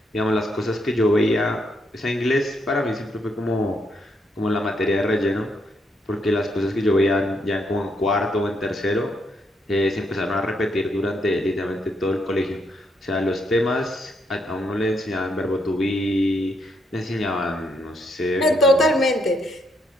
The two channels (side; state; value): both; normal; correlation 0.76